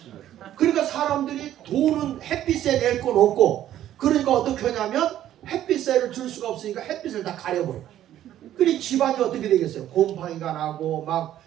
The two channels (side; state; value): left; quieter; 12.1 dB